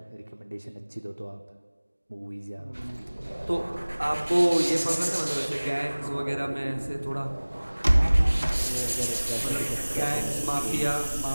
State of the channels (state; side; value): inverted; both; correlation -1.00